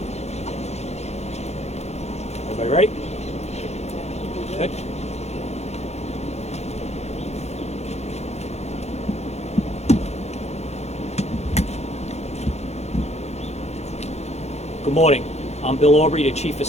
Everybody ready? Good. Good morning. I'm Bill Aubrey, the Chief of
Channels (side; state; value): right; late; 0.31 ms